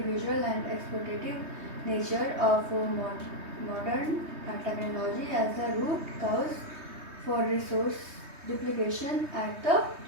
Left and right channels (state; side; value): late; left; 3.2 ms